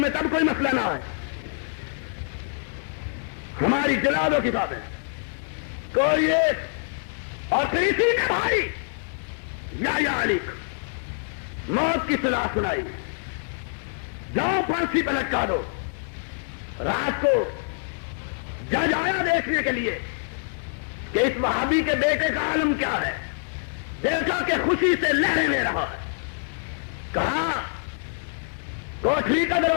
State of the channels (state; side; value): silent; right; digital silence